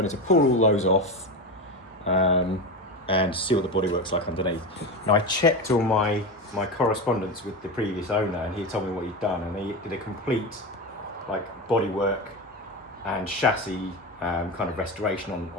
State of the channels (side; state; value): both; normal; correlation 0.20